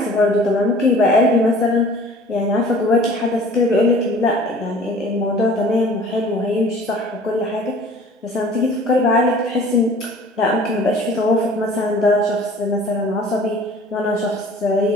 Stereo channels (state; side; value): normal; both; correlation 0.48